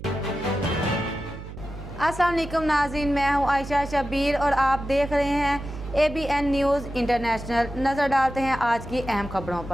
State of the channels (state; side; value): noise; right; hum, 12 dB below the sound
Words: السلام علیکم ناظرین، میں ہوں عائشہ شبیر اور آپ دیکھ رہے ہیں ABN نیوز انٹرنیشنل۔ نظر ڈالتے ہیں آج کی اہم خبروں